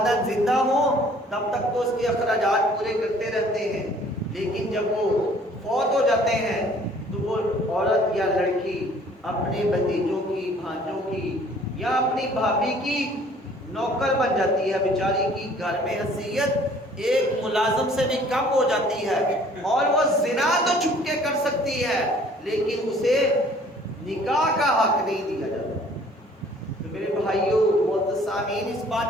زندہ ہوں تب تک تو اس کے اخراجات پورے کرتے رہتے ہیں، لیکن جب وہ فوت ہو جاتے ہیں تو وہ عورت یا لڑکی اپنے بھتیجوں کی، بھانجوں کی یا اپنی بھابھی کی نوکر بن جاتی ہے، بیچاری کی گھر میں حیثیت ایک ملازم سے بھی کم ہو جاتی ہے، اور وہ زنا تو چھپ کے کر سکتی ہے لیکن اسے نکاح کا حق نہیں دیا جاتا۔ تو میرے بھائیوں معزز سامعین، اس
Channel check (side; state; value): both; normal; correlation 0.55